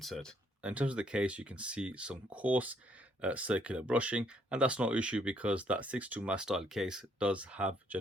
In terms of the case, you can see some coarse circular brushing, and that's no issue because that 62Mas style case does have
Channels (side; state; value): both; normal; correlation 0.68